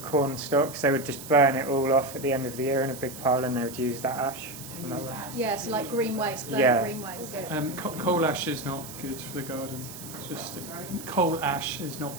stalks. They would just burn it all off at the end of the year in a big pile, and they would use that ash. From that one. Yeah, so like green waste, burn green waste. Coal ash is not good for the garden. It's just coal ash is not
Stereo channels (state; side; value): noise; right; hiss, 13 dB below the sound